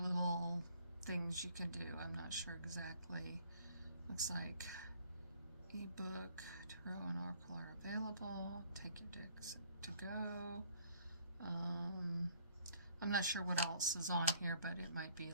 things you can do. I'm not sure exactly. Looks like ebook, tarot, and oracle are available. Take your decks to go. I'm not sure what else is on here, but it might be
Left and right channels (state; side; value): inverted; both; correlation -0.60